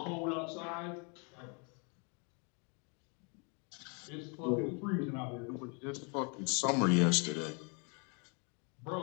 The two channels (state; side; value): quieter; right; 35.5 dB